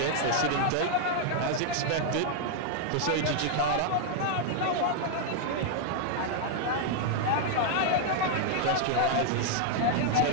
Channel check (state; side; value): different; both; correlation 0.00